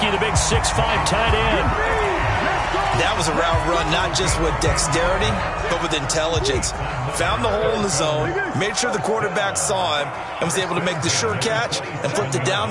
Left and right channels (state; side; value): identical; both; correlation 1.00